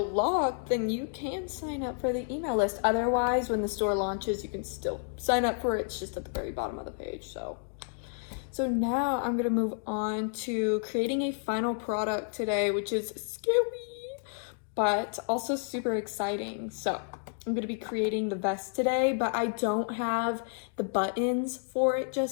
locked, then you can sign up for the email list. Otherwise, when the store launches, you can still sign up for it. It's just at the very bottom of the page. So now I'm gonna move on to creating a final product today, which is scary, but also super exciting. So I'm gonna be creating the vest today, but I don't have the buttons for it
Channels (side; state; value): right; silent; 57 dB below the other